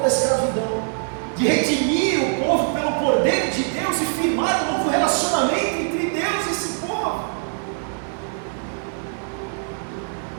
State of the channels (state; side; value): silent; left; 58 dB below the other